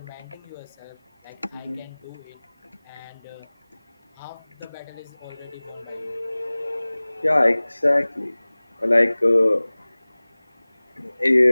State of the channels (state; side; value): inverted; both; correlation -1.00